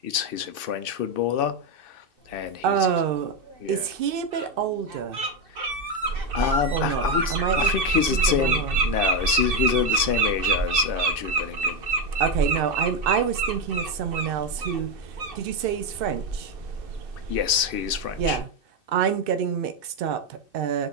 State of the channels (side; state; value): left; late; 2.6 ms